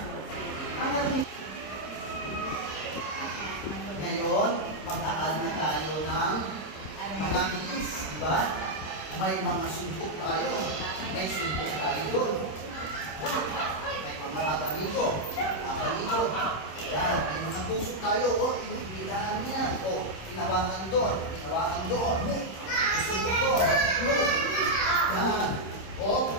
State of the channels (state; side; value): late; right; 26 ms